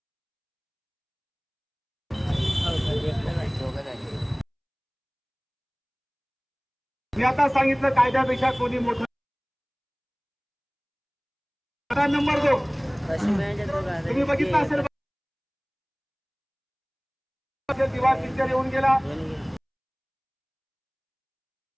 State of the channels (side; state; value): both; identical; correlation 1.00